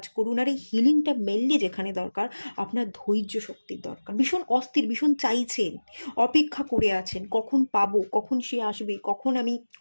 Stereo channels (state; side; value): inverted; both; correlation -1.00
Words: করুন। আর এই হিলিংটা মেনলি যেখানে দরকার, আপনার ধৈর্য শক্তির দরকার। ভীষণ অস্থির, ভীষণ চাইছেন, অপেক্ষা করে আছেন কখন পাবো, কখন সে আসবে, কখন আমি